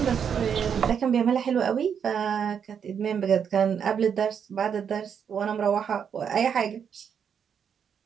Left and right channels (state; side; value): quieter; left; 7.5 dB